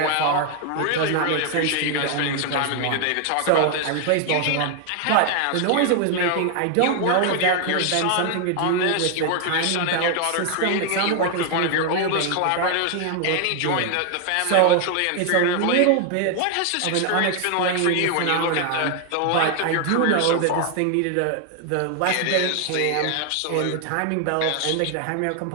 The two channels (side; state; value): both; different; correlation 0.00